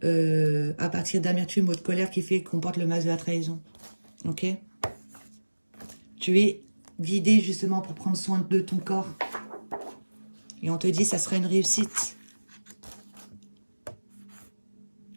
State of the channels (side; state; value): both; inverted; correlation -1.00